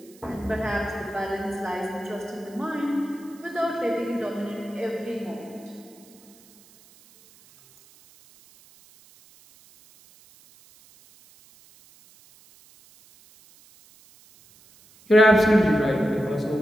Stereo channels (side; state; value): right; noise; hiss, 26 dB below the sound